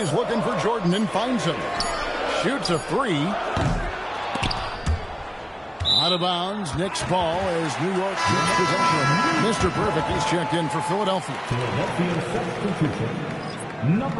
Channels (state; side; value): identical; both; correlation 1.00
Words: looking for Jordan and finds him. Shoots a 3. Out of bounds. Knicks ball as New York gets possession. Mr. Perfect is checked in for Philadelphia. Philadelphia substitution.